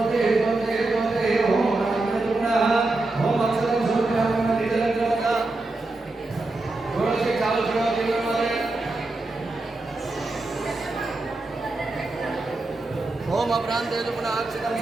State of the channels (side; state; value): left; quieter; 3.1 dB